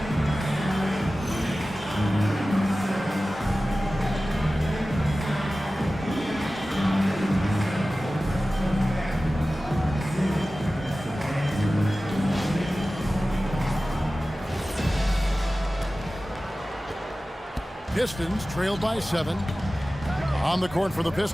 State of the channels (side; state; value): both; normal; correlation 0.96